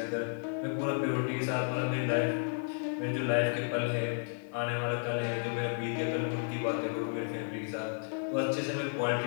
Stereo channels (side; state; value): right; silent; digital silence